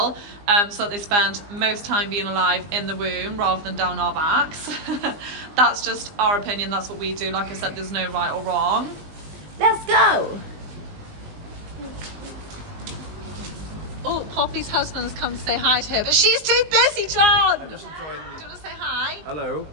so that they spend most time being alive in the womb rather than down our backs. That's just our opinion, that's what we do. Like I said, there's no right or wrong. Let's go! Oh, Poppy's husband has come to say hi to her, but she's too busy, John! Do you want to say hi? Hello.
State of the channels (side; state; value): left; late; 20 ms